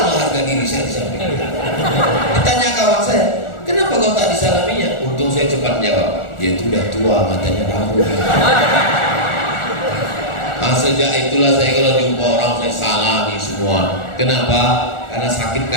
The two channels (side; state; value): right; late; 1.4 ms